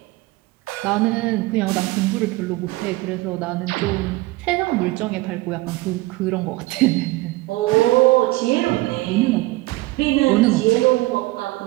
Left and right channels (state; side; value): quieter; left; 20.3 dB